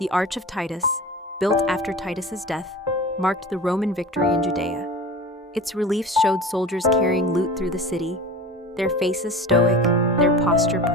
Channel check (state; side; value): normal; both; correlation 0.35